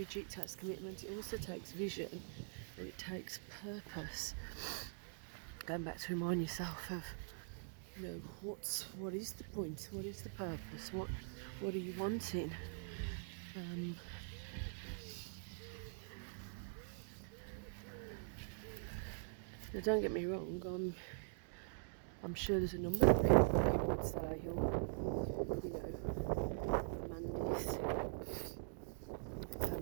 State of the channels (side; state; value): left; silent; digital silence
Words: it takes commitment, it also takes vision, and it takes purpose. Going back to remind yourself of, you know, what is the point, what is the purpose, what are you wanting? Now, don't get me wrong, I'm sure there's a number of people who would say, you know, Mandys,